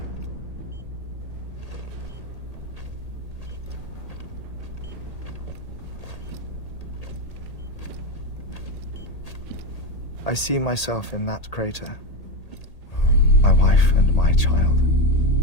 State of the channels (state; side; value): late; right; 1.8 ms